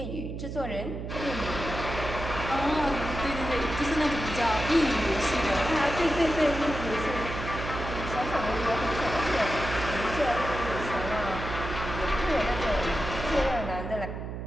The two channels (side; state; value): right; noise; hum, 7 dB below the sound